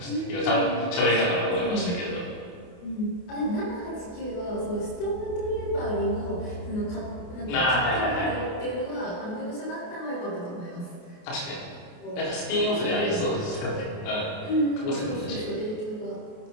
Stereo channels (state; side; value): late; right; 28 ms